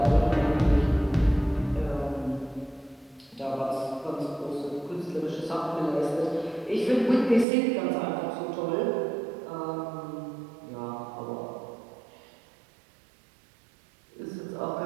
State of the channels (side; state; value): left; drops out; at 7.5 s